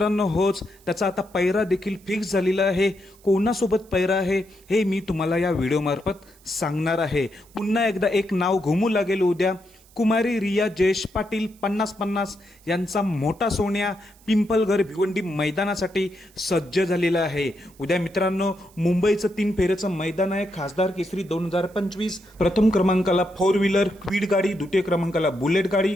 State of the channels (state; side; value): noise; right; hiss, 28 dB below the sound